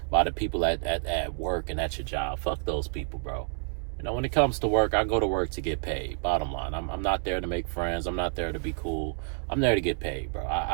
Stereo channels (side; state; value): left; silent; 59 dB below the other